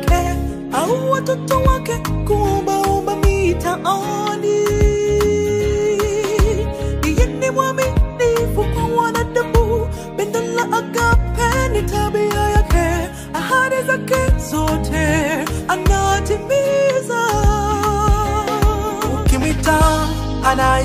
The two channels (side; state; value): both; identical; correlation 1.00